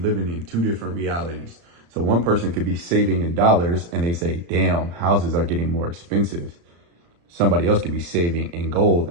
in two different realities. So one person could be saving in dollars and they say, damn, houses are getting more expensive. Somebody else could be saving in gold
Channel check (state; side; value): late; left; 35 ms